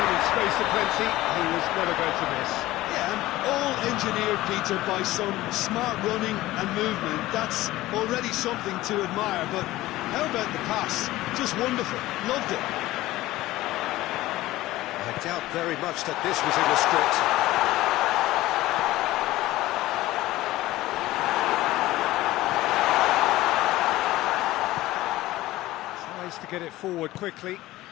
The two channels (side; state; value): right; quieter; 17.0 dB